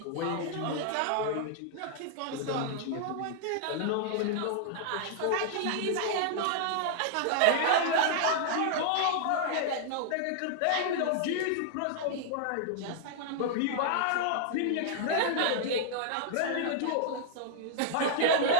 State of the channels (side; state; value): both; different; correlation -0.01